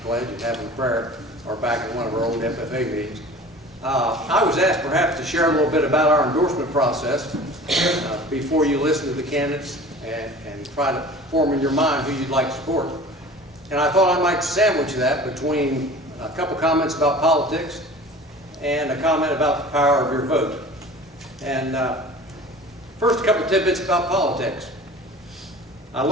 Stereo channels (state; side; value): normal; both; correlation 0.42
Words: pledge and having prayer, or back in one of our old FFA meetings. I was asked perhaps to share a little bit about our endorsement process before you listen to the candidates and try to form in your mind who you'd like to support. And I thought I might sandwich that between a couple comments about politics and a comment about the power of your vote. And first, a couple tidbits about politics. I